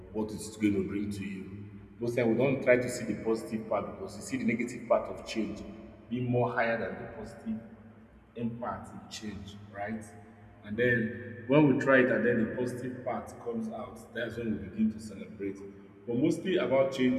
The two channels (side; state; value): both; identical; correlation 1.00